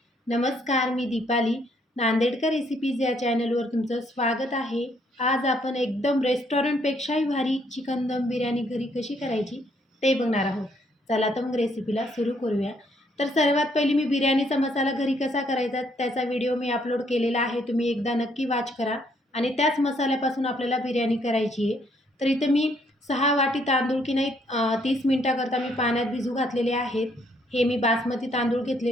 नमस्कार, मी दीपाली. नांदेडकर रेसिपीज या चॅनलवर तुमचं स्वागत आहे. आज आपण एकदम रेस्टॉरंटपेक्षाही भारी चिकन दम बिर्याणी घरी कशी करायची ते बघणार आहोत. चला तर मग रेसिपीला सुरू करूया. तर सर्वात पहिली मी बिर्याणीचा मसाला घरी कसा करायचा त्याचा व्हिडिओ मी अपलोड केलेला आहे. तुम्ही एकदा नक्की वॉच करा. आणि त्याच मसाल्यापासून आपल्याला बिर्याणी करायची आहे. तर इथं मी 6 वाटी तांदूळ की नाही 30 मिनटाकरता मी पाण्यात भिजू घातलेले आहेत. हे मी बासमती तांदूळ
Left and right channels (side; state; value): both; normal; correlation 0.69